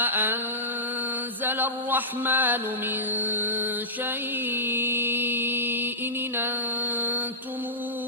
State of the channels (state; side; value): normal; both; correlation -0.16